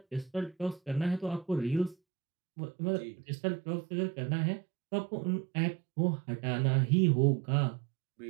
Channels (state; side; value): drops out; left; at 2.0 s